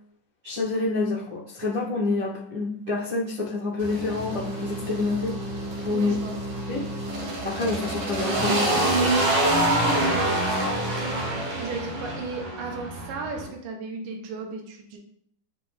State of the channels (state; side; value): late; left; 10 ms